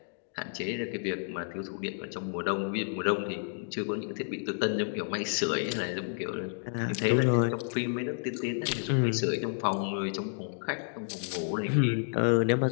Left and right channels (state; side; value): silent; right; digital silence